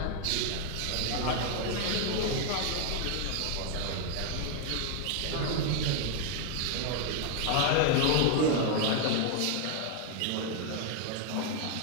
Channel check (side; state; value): both; different; correlation 0.00